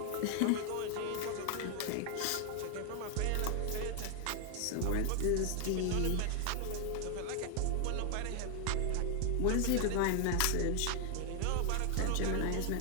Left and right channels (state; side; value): different; both; correlation 0.00